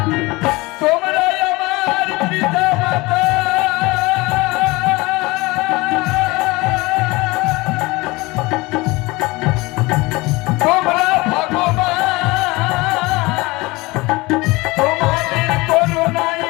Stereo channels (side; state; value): right; quieter; 22.6 dB